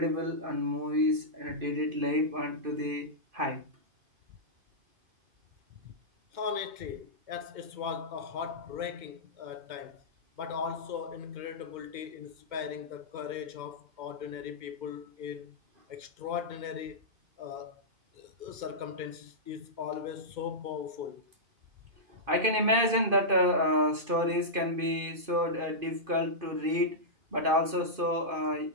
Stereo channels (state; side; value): late; left; 2.5 ms